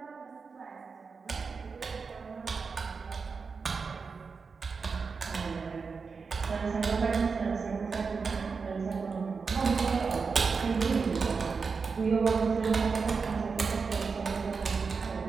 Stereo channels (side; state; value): left; quieter; 5.0 dB